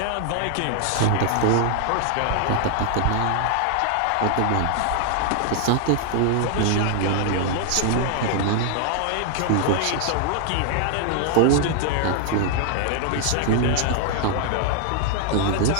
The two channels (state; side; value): different; both; correlation 0.00